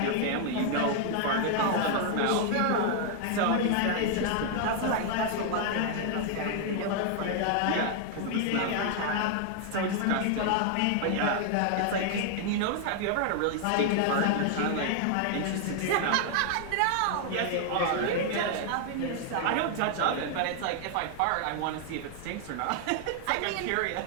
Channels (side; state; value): both; different; correlation 0.00